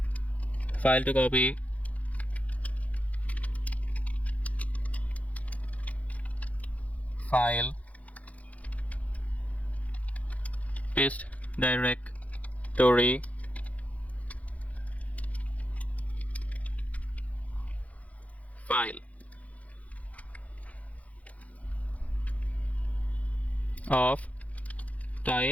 file to copy, file, paste directory, file of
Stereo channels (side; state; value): right; late; 0.068 ms